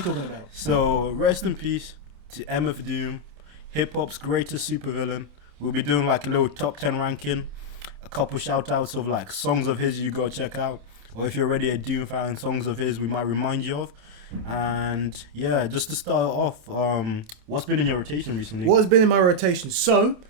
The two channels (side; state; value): left; late; 28 ms